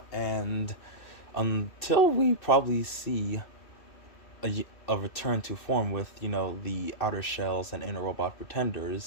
and until we probably see a return to form with, the outer shells and inner robot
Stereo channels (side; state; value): right; late; 2.6 ms